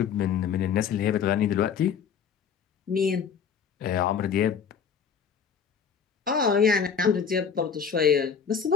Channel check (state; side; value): quieter; right; 6.9 dB